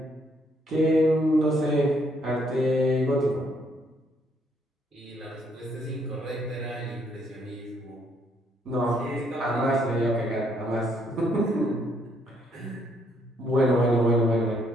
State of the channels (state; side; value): normal; both; correlation 0.70